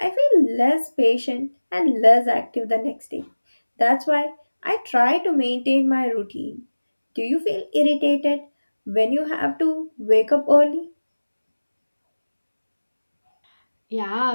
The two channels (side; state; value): both; inverted; correlation -1.00